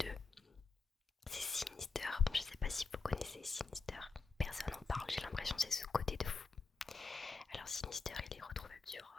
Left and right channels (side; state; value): right; quieter; 4.4 dB